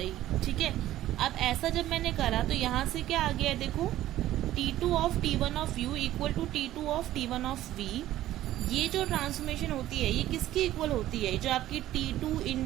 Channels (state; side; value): quieter; left; 14.0 dB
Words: ठीक है। अब ऐसा जब मैंने करा तो यहाँ से क्या आ गया, देखो T2 of T1 of U equal to T2 of T1 of V। ये जो ट्रांसफॉर्मेशन होती है ये किसकी इक्वल होती है, जो आपकी T2